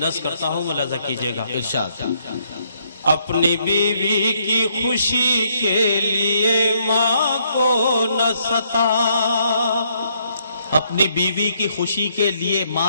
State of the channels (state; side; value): inverted; both; correlation -0.72